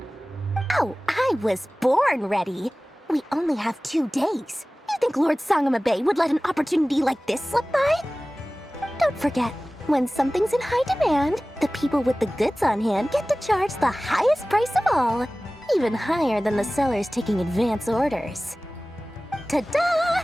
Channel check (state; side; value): normal; both; correlation 0.98